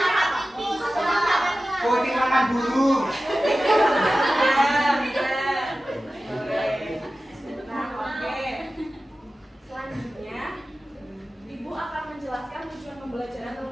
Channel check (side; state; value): both; normal; correlation 0.95